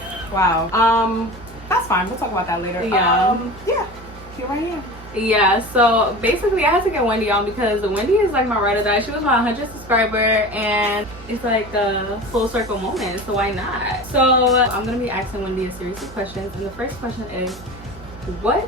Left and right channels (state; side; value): normal; both; correlation 0.33